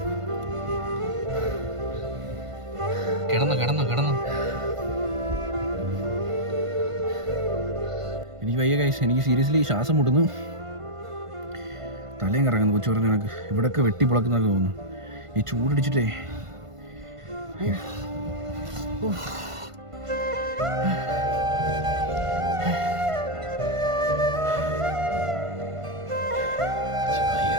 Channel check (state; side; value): late; left; 1.5 ms